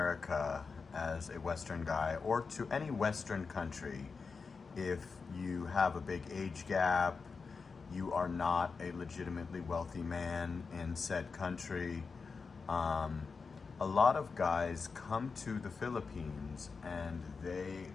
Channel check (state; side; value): quieter; right; 4.9 dB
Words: as a Western guy or to any Western country if you have a big age gap, you are not a legitimately wealthy man in said country. Um, a lot of guys come to the Philippines and they